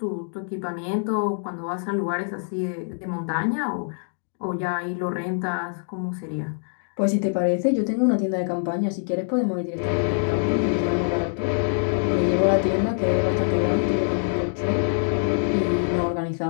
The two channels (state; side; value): silent; right; digital silence